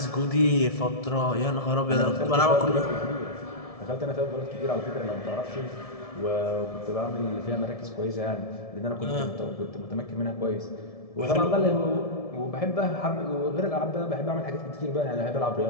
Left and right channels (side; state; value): right; late; 1.7 ms